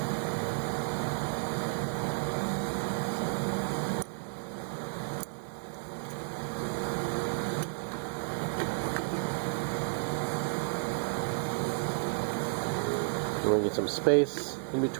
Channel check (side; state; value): left; silent; digital silence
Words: We're going to get some space in